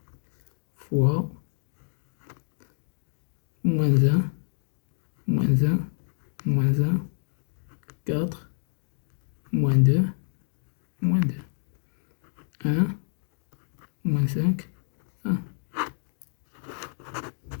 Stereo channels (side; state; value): right; silent; digital silence